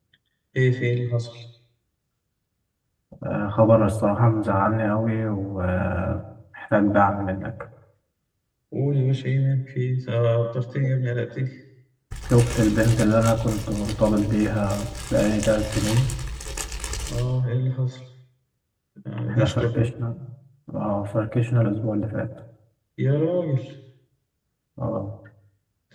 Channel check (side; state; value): both; identical; correlation 1.00